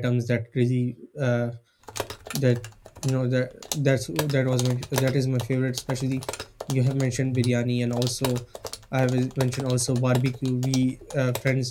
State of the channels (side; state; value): both; identical; correlation 1.00